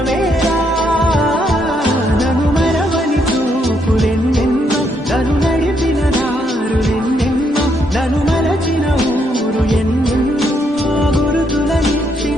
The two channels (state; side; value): normal; both; correlation 0.75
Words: నన్ను మరవని చూపులెన్నెన్నో నన్ను నడిపిన దారులెన్నెన్నో నన్ను మరచిన ఊరు ఎన్నెన్నో